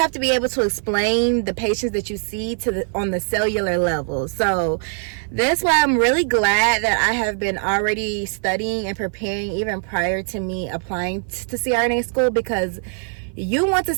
to be able to explain the patients that you see on the cellular level. So that's why I'm really glad that I have been already studying and preparing even prior to me applying to CRNA school, because you want to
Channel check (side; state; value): left; silent; 55 dB below the other